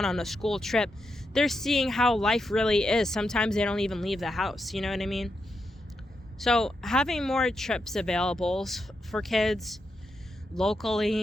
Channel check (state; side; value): normal; both; correlation 0.85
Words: on a school trip. They're seeing how life really is. Sometimes they don't even leave the house. You know what I mean? So having more trips available for kids